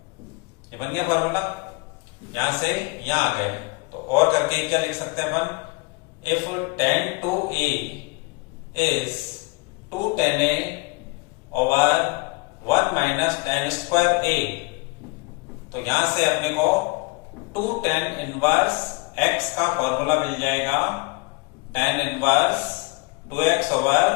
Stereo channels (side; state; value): right; quieter; 27.9 dB